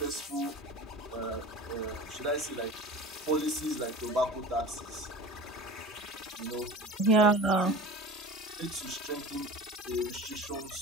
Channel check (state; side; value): normal; both; correlation 0.36